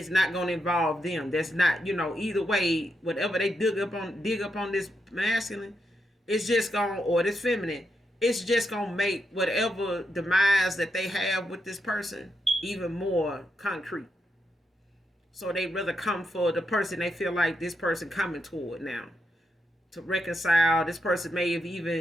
not going to involve them. That's not, either way, whatever they dig up on this masculine, it's just going, or this feminine, it's just going to make whatever demise that they have with this person even more concrete. So they rather come for the person they feel like this person coming toward now to reconcile. This person may have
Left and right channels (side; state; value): both; normal; correlation 0.83